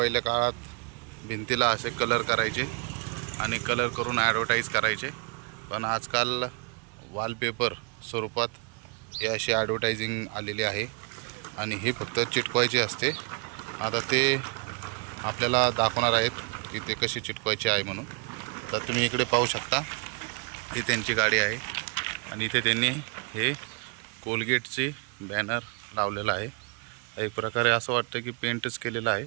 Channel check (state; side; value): quieter; left; 35.1 dB